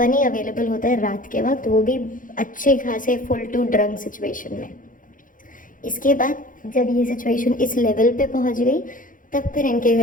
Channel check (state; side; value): late; right; 0.39 ms